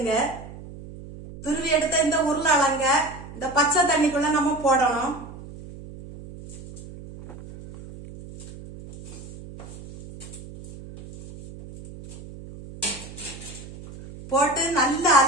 துருவி எடுத்த இந்த உருளைக்கிழங்க இந்த பச்சை தண்ணிக்குள்ள நம்ம போடணும். போட்டு நல்லா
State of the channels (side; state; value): right; noise; hum, 15 dB below the sound